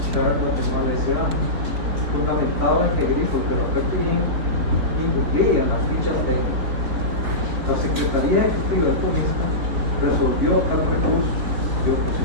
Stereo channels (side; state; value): left; late; 4.2 ms